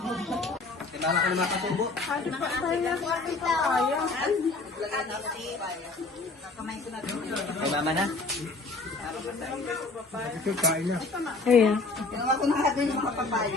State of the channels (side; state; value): right; quieter; 3.5 dB